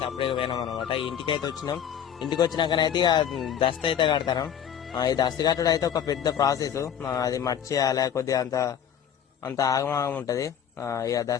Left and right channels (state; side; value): quieter; right; 8.9 dB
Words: సపరేట్ పోయినాం అనమాట. ఇంటికి అయితే వచ్చినాం. ఇంటికి వచ్చినాకనైతే దస్త అయితే కడతాం. ఈ దస్త కట్టడం అయితే ఒక పెద్ద ప్రాసెస్. అది మర్చేయాలి, కొద్దిగా అంత ఆగమాగం ఉంటది. ఇక